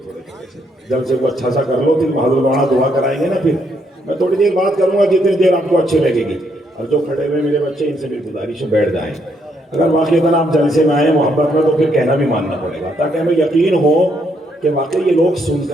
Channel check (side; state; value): both; normal; correlation 0.74